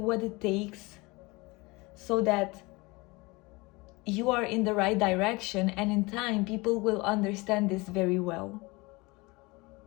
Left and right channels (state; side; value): quieter; right; 24.5 dB